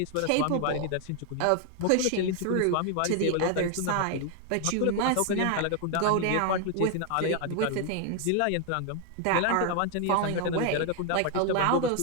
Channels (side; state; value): both; different; correlation 0.01